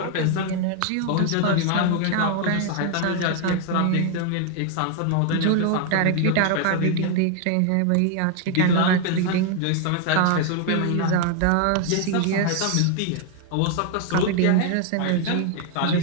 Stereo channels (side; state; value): both; different; correlation 0.00